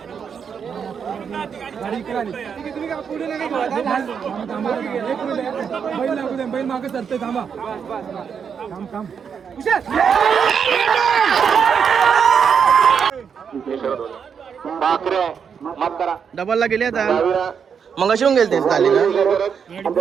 बैल मागे सरतोय, थांबा. डबलला गेले आता. मग अशी गेले तेच झाली ना.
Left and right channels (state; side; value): quieter; left; 6.9 dB